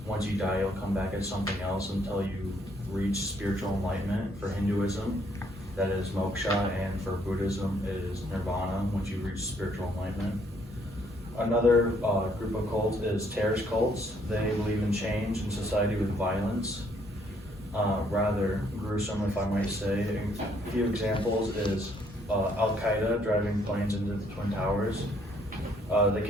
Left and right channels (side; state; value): both; normal; correlation 0.67